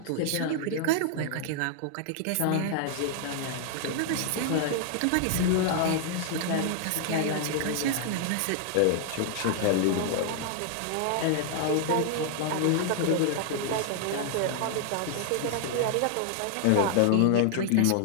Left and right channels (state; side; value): different; both; correlation 0.00